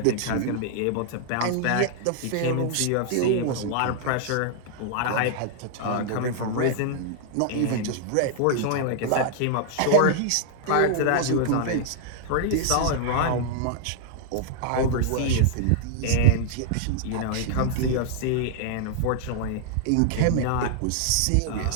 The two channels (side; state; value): both; different; correlation -0.01